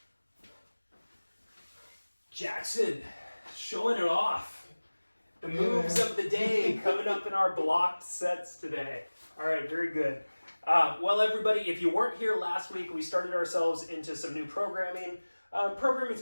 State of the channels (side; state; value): both; inverted; correlation -1.00